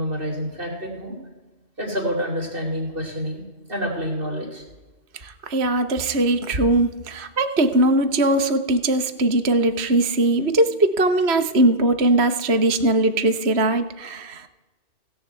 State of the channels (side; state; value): left; late; 3.0 ms